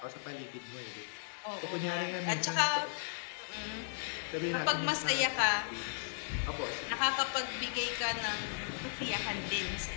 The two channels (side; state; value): right; silent; digital silence